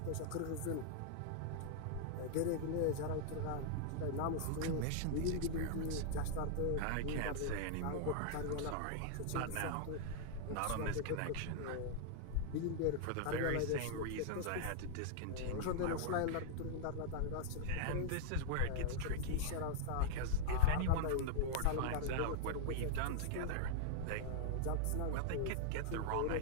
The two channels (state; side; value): different; both; correlation -0.01